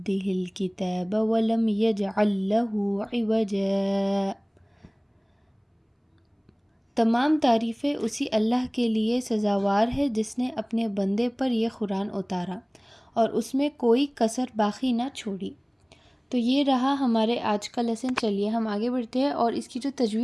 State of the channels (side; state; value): both; identical; correlation 1.00